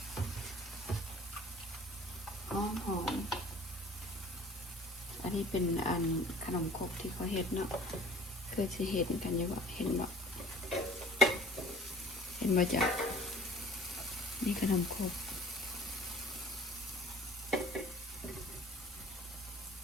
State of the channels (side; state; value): both; normal; correlation 0.51